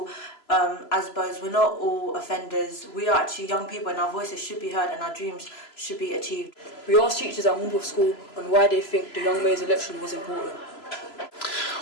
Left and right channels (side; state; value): right; late; 3.0 ms